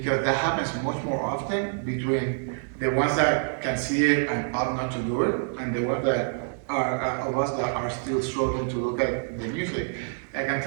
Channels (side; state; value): left; silent; 60 dB below the other